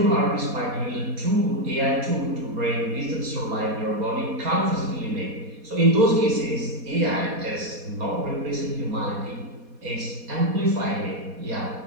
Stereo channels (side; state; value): left; late; 4.2 ms